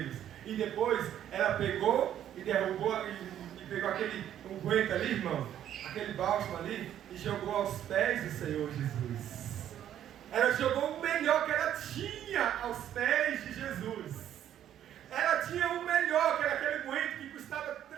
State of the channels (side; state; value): left; quieter; 10.8 dB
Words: E depois ela pegou e derrubou e pegou aquele unguento ali, irmão, aquele bálsamo ali, e jogou aos pés do Senhor Jesus. Ela jogou o melhor que ela tinha aos pés de Jesus. Ela tinha o melhor, que era aquele unguento que custava